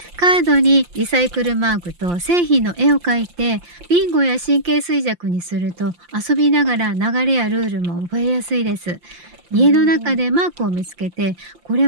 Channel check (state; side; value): late; left; 5.7 ms